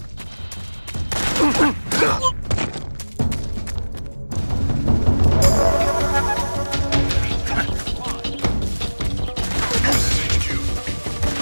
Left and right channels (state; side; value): inverted; both; correlation -1.00